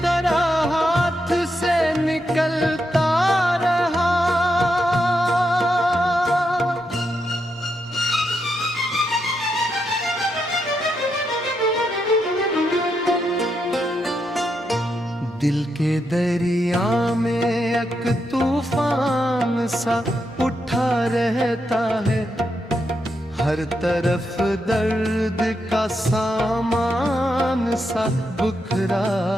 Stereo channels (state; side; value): normal; both; correlation 0.83